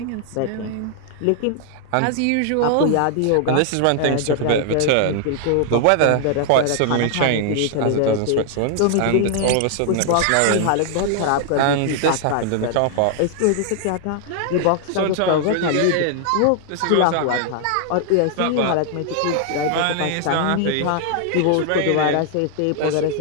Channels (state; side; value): different; both; correlation 0.00